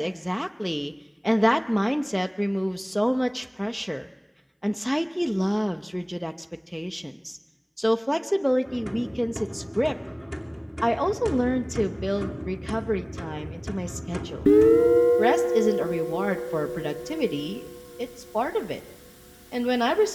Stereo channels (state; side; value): identical; both; correlation 1.00